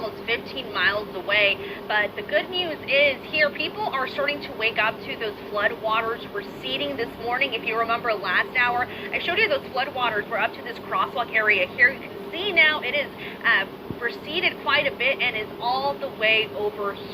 15 miles away. But the good news is here, people are starting to wake up to those flood waters receding this morning. If you remember last hour, I showed you those flood waters were up to this crosswalk area here. You can see now it is receded quite a bit and is all the way over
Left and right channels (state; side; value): identical; both; correlation 1.00